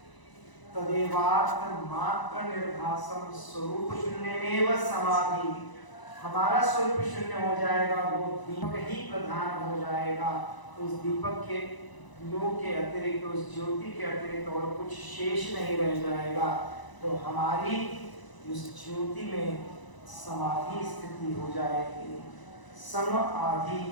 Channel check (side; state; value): right; late; 1.0 ms